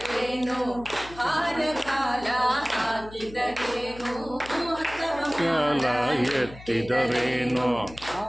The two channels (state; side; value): noise; left; hum, 17 dB below the sound